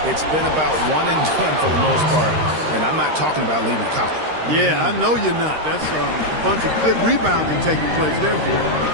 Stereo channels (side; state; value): left; late; 13 ms